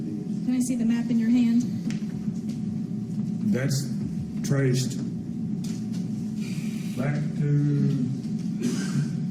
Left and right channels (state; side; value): identical; both; correlation 1.00